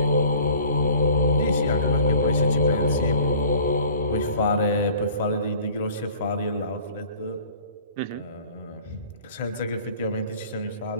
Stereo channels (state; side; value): inverted; both; correlation -0.48